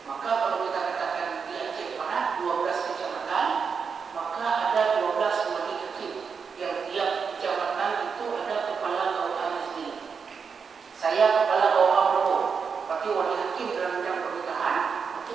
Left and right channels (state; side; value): quieter; left; 5.9 dB